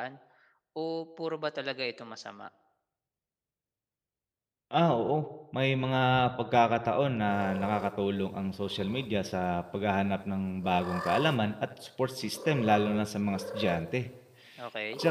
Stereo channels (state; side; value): identical; both; correlation 1.00